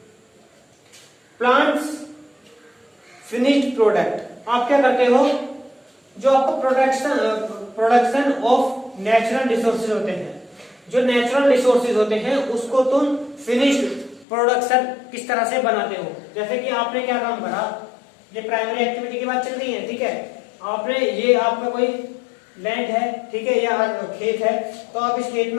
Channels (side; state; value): right; drops out; at 14.2 s